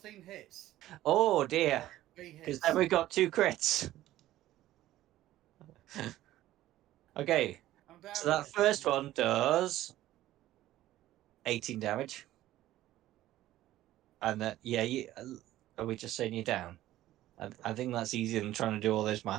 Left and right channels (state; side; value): quieter; left; 14.6 dB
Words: hits. Oh dear. 3 Because hits. then we got 2 crits. Okay. I'm down So that here. first one does 18 damage. And that, yeah, are we just saying you're down? I think that's easier than trying to do all those